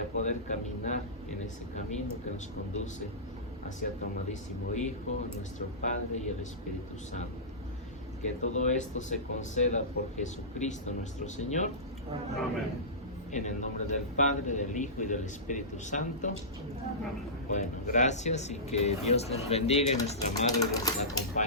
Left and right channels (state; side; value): normal; both; correlation -0.19